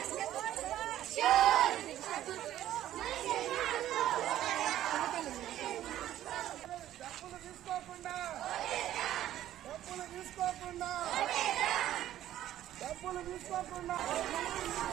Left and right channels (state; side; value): quieter; left; 12.7 dB